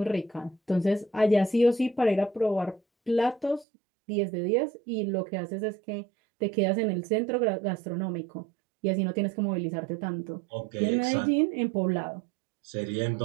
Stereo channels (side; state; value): left; drops out; at 3.7 s